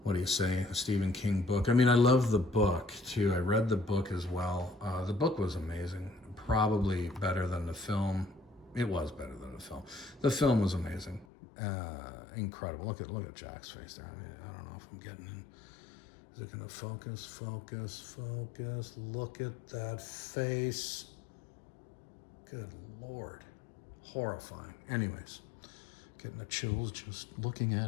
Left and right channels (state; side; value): drops out; right; at 11.2 s